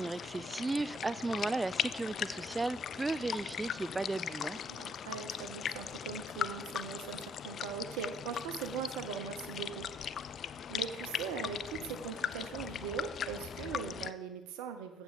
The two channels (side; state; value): both; normal; correlation 0.65